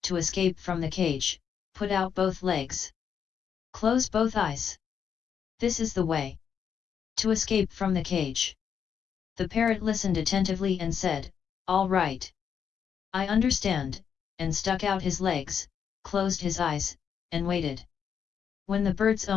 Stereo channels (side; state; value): right; quieter; 7.5 dB